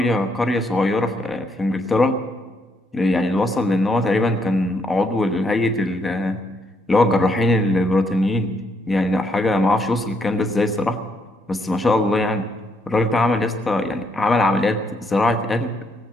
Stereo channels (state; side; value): normal; both; correlation 0.74